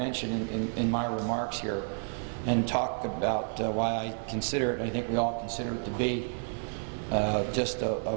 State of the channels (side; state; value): left; silent; 57 dB below the other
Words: in my remarks here, and talk about why I consider it, I think we all consider it to be just